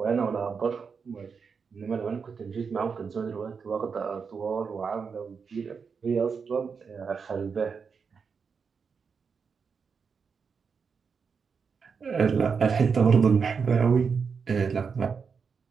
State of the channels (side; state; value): left; quieter; 5.8 dB